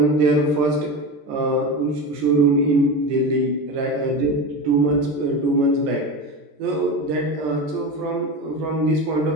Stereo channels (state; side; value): late; left; 13 ms